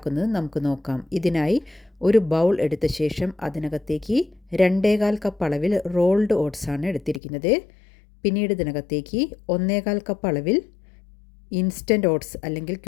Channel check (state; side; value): drops out; right; at 7.2 s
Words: നമുക്ക് നോക്കാം. ഇതിനായി ഒരു ബൗൾ എടുത്ത ശേഷം അതിനകത്തേക്ക് 2.25 കപ്പ് അളവിൽ റോൾഡ് ഓട്സ് ആണ് എടുത്തിരിക്കുന്നത്. പിന്നീട് ഇതിനകത്തേക്ക് 1.25 കപ്പ് അളവിൽ ഇൻസ്റ്റൻറ്റ് ഓട്സ് അല്ലെങ്കിൽ